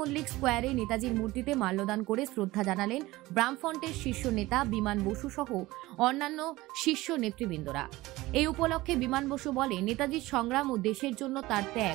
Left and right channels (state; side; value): quieter; left; 18.9 dB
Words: স্কোয়ারে নেতাজির মূর্তিতে মাল্যদান করে শ্রদ্ধা জানালেন বামফ্রন্টের শীর্ষ নেতা বিমান বসু সহ অন্যান্য শীর্ষ নেতৃবৃন্দরা। এই উপলক্ষে বিমান বসু বলে, নেতাজির সংগ্রাম ও দেশের জন্য তার